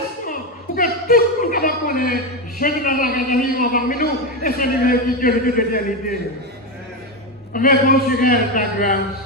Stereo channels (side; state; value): both; normal; correlation 0.12